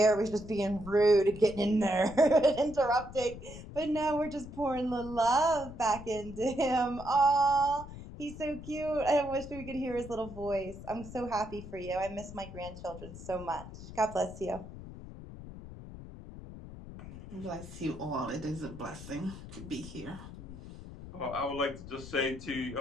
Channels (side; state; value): left; noise; rumble, 13 dB below the sound